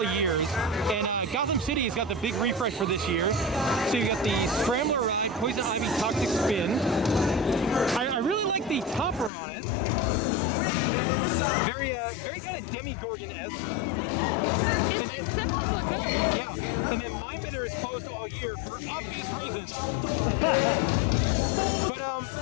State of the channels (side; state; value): right; drops out; at 9.3 s